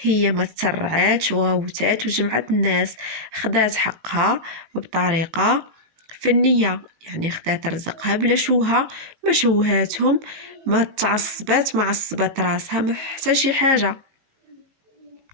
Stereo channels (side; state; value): left; late; 19 ms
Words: هي ما تسرعات وغوتات وجمعت الناس خدات حقها بطريقة فنية، يعني خدات رزقها بلا شوها ما شوهاتهم ما تعصبات ما عصبات راسها ما حتى شي حاجة.